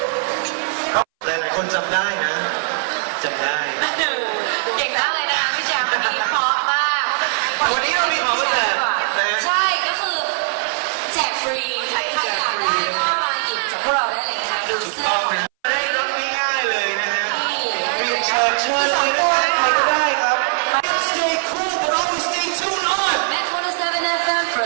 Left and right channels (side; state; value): left; silent; 62 dB below the other